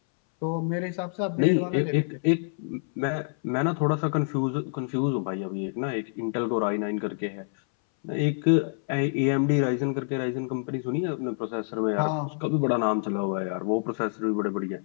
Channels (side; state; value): right; silent; 60 dB below the other